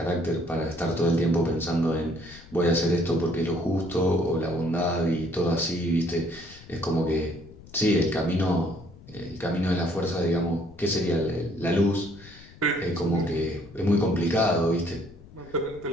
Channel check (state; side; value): noise; left; rumble, 20 dB below the sound